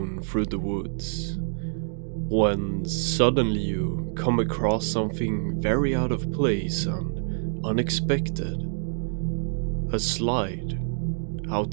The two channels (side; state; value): left; silent; digital silence